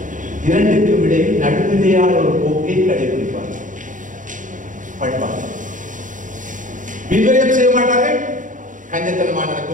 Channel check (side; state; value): left; late; 0.38 ms